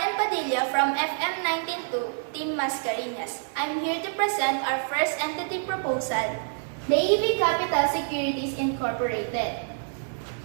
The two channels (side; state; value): left; silent; 60 dB below the other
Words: Padilla from FM 192, Team Mascariñas. I'm here to present our first entity proposal, the AV Capital Securities Incorporated.